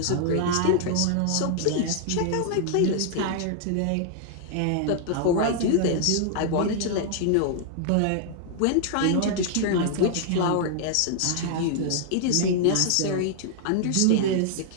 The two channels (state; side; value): different; both; correlation -0.01